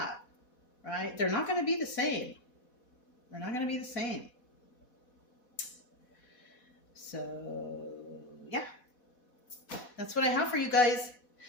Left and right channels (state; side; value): late; right; 4.1 ms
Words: right? They're not going to be the same. They're not going to be the same. So, yeah. That's what I have for you guys.